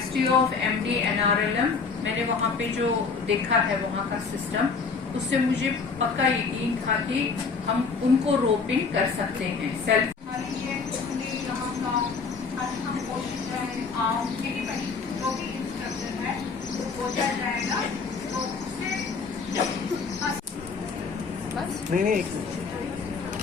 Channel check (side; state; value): right; quieter; 4.9 dB